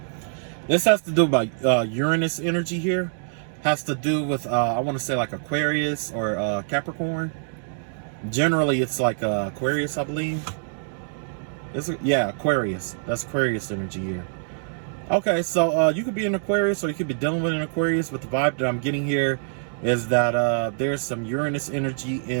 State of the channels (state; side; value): silent; left; digital silence